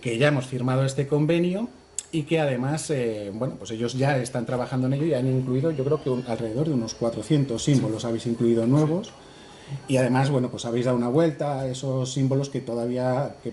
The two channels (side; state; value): both; identical; correlation 1.00